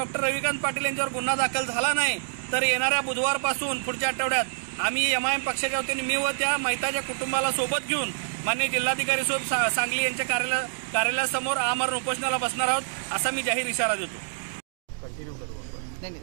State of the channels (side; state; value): left; silent; digital silence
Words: रविकांत पाटील यांच्यावर गुन्हा दाखल झाला नाही तर येणाऱ्या बुधवारपासून पुढच्या आठवड्यात आम्ही एमआयएम पक्षाच्या वतीने मी व त्या मयताच्या कुटुंबाला सोबत घेऊन माननीय जिल्हाधिकारी साहेब सांगली यांच्या कार्यालयासमोर आमरण उपोषणाला बसणार आहोत असा मी जाहीर इशारा देतो। कंटिन्यू करूँ